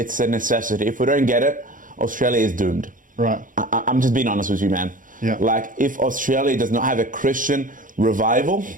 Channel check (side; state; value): left; late; 0.39 ms